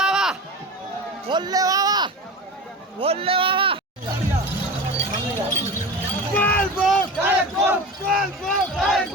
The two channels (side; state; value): both; normal; correlation 0.30